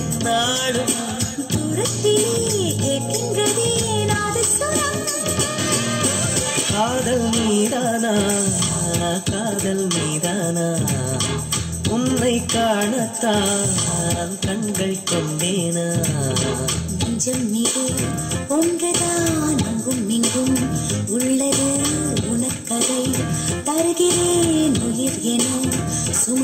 நாளும் தூரத்திலே கேட்கின்றதே நாதஸ்வரம் காதல் நீதானா காதல் நீதானா உன்னை காணத்தான் கண்கள் கொண்டேனா நெஞ்சம் மீது ஒன்றுதான் அங்கும் இங்கும் உள்ளது உனக்கதை தருகிறேன் உயிர் என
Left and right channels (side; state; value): both; identical; correlation 1.00